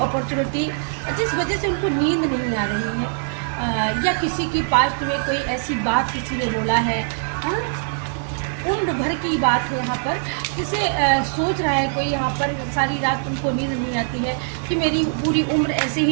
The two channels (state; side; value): silent; left; 64 dB below the other